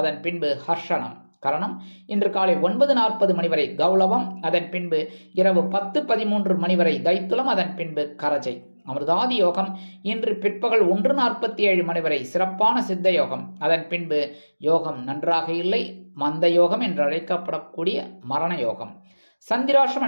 பின்பு ஹர்ஷனம். கரணம் இன்று காலை 9:40 மணி வரை கௌளவம், அதன் பின்பு இரவு 10:13 மணி வரை தைத்துலம், அதன் பின்பு கரஜை. அமிர்தாதி யோகம் இன்று பிற்பகல் 1:47 மணி வரை சிறப்பான சித்த யோகம், அதன் பின்பு யோகம் நன்றாக இல்லை, மந்த யோகம் என்று அழைக்கப்படக்கூடிய மரண யோகம். சந்திராஷ்டம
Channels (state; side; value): inverted; both; correlation -1.00